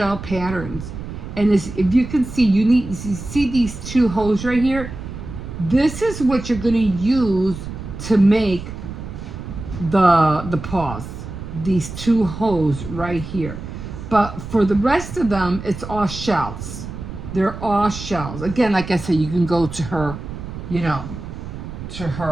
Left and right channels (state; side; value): noise; right; rumble, 10 dB below the sound